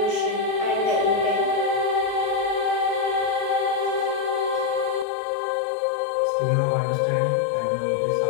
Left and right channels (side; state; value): right; drops out; at 5.1 s